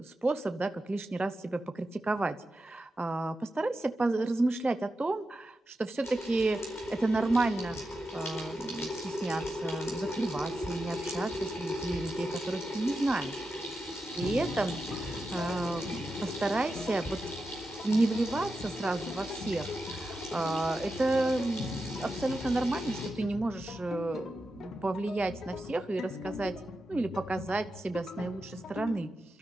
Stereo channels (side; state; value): both; normal; correlation 0.90